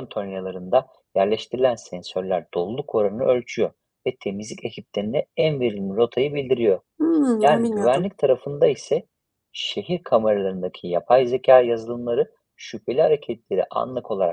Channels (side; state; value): both; identical; correlation 1.00